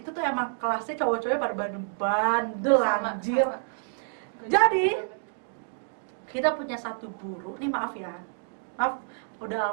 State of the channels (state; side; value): silent; left; digital silence